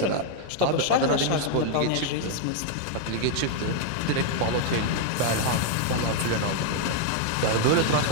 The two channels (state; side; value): different; both; correlation 0.00